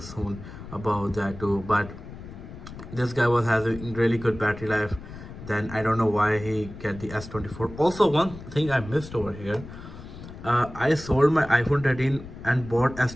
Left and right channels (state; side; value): noise; left; rumble, 14 dB below the sound